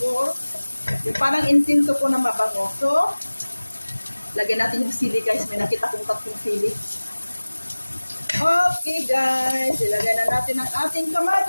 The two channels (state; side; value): inverted; both; correlation -1.00